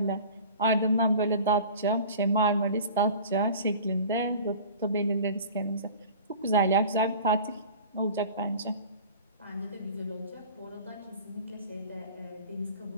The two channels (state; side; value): inverted; both; correlation -0.41